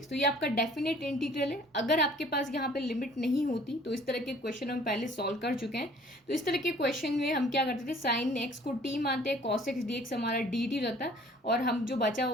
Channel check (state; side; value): normal; both; correlation 0.54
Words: तो ये आपका डेफिनेट इंटीग्रल है। अगर आपके पास यहाँ पे लिमिट नहीं होती तो इस तरह के क्वेश्चन हम पहले सॉल्व कर चुके हैं। तो इस तरह के क्वेश्चन में हम क्या करते थे, साइन एक्स को टी मानते हैं, कॉस एक्स डी एक्स हमारा डी टी रहता है, और हम जो बचा